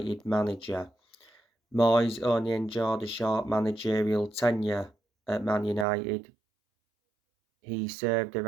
manager. Moyes only enjoyed a short managerial tenure at Man United. He served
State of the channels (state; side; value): drops out; left; at 5.9 s